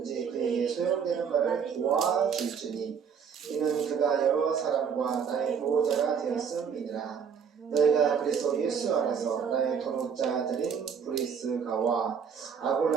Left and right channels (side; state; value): left; quieter; 6.9 dB